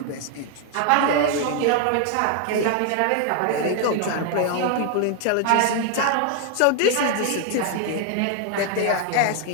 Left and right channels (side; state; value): both; different; correlation 0.00